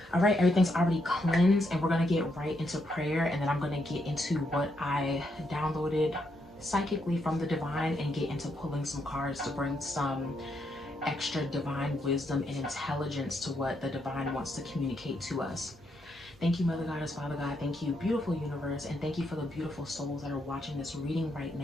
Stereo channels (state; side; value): normal; both; correlation 0.78